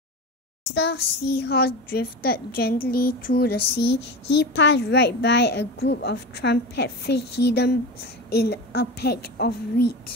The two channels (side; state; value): both; normal; correlation 0.26